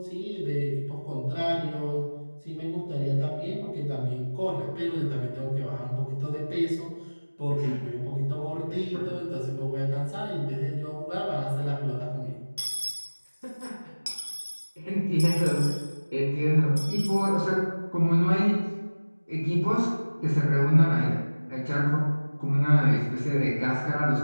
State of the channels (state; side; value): inverted; both; correlation -1.00